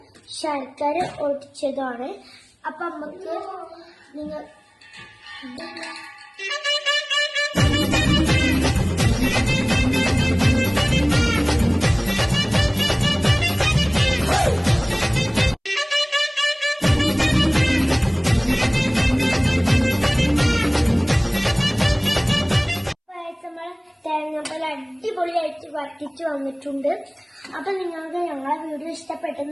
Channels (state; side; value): identical; both; correlation 1.00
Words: ശർക്കര ഒടിച്ചതാണ്. അപ്പൊ നമുക്ക് നിങ്ങൾ തേങ്ങാപ്പാൽ അടിപൊളിയായിട്ട് വറ്റിച്ച് വന്നിട്ടുണ്ട്. അപ്പൊ നിങ്ങൾക്ക് ഞങ്ങളെ വീഡിയോ